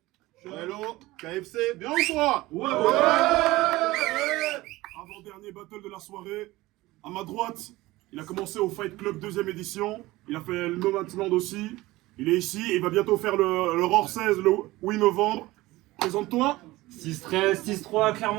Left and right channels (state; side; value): quieter; left; 18.9 dB